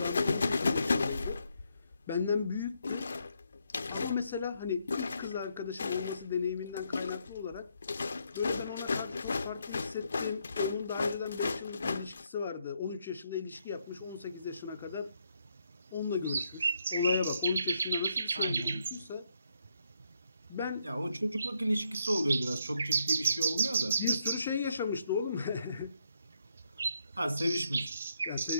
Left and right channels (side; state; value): both; inverted; correlation -0.77